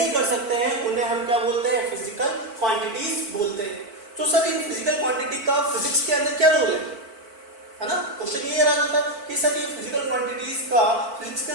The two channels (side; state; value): left; late; 4.5 ms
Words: कर सकते हैं, उन्हें हम क्या बोलते हैं, फिजिकल क्वांटिटीज बोलते हैं। तो सर इन फिजिकल क्वांटिटी का फिजिक्स के अंदर क्या रोल है ना, क्वेश्चन ये रहा था कि सर ये फिजिकल क्वांटिटीज का फिजिक्स के